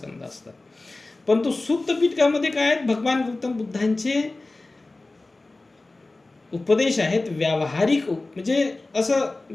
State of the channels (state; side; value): quieter; right; 3.1 dB